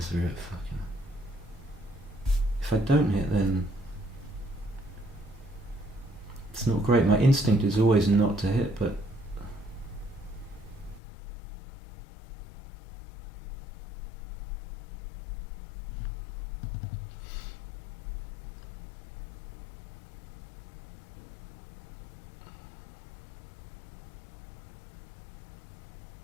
real fucking... If I don't hit, then it's not great. My instinct is always not to hit, but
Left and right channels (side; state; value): right; drops out; at 11.0 s